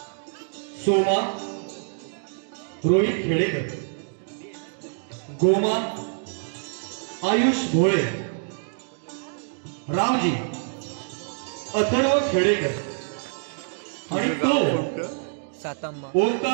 सोमा रोहित खेडेकर, गोमा आयुष भोळे, रामजी अथर्व खेडेकर आणि तो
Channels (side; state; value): left; silent; digital silence